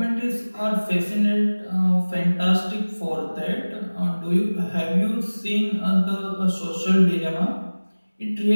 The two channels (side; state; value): both; inverted; correlation -1.00